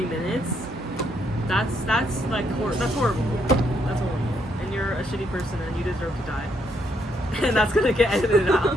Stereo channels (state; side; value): normal; both; correlation 0.74